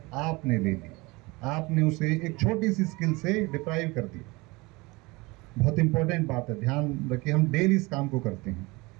आपने ले ली, आपने उसे एक छोटी सी स्किल से डिप्राइव कर दिया। बहुत इंपॉर्टेंट बात है, ध्यान रखिए। हम डेली इस काम को करते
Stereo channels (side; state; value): left; quieter; 24.1 dB